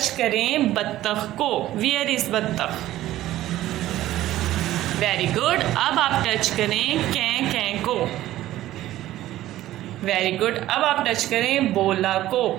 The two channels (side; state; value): left; quieter; 14.6 dB